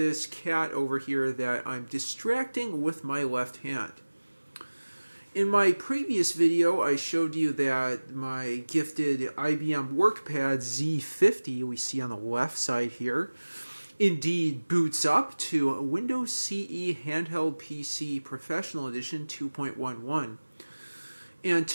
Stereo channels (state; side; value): inverted; both; correlation -1.00